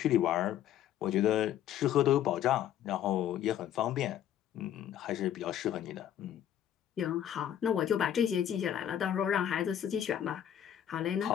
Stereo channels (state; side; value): quieter; right; 10.6 dB